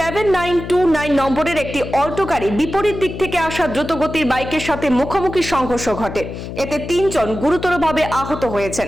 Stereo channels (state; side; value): noise; left; hum, 9 dB below the sound